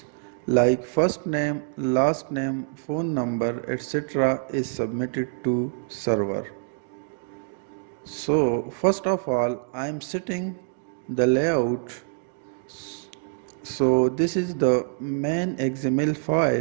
like first name, last name, phone number, etc. is submitted to server. So first of all I am setting the layout. So this is the main XML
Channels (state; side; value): silent; left; digital silence